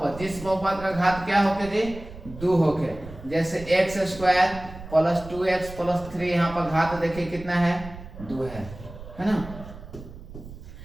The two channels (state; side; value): noise; right; rumble, 14 dB below the sound